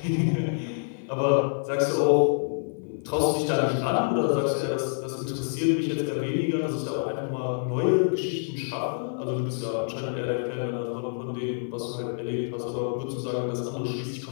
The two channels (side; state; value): right; silent; 60 dB below the other